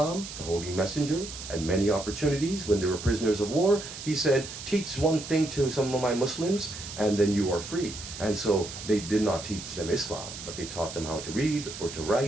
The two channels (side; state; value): right; noise; hiss, 10 dB below the sound